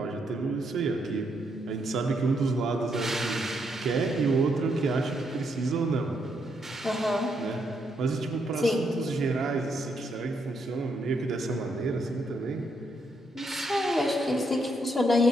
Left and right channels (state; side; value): normal; both; correlation 0.77